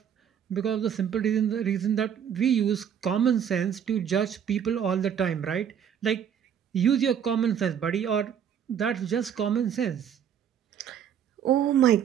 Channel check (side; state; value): left; quieter; 8.5 dB